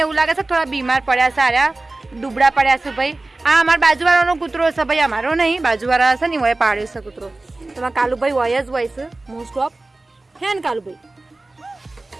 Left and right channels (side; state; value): left; quieter; 3.0 dB